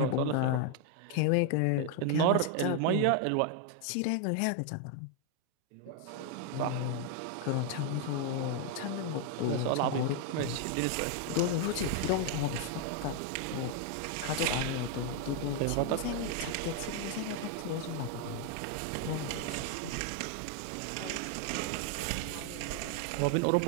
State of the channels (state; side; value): different; both; correlation 0.00